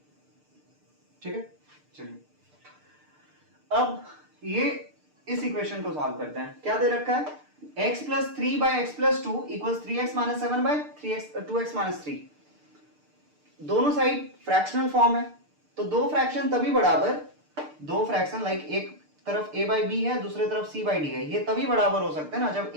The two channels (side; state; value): left; late; 6.7 ms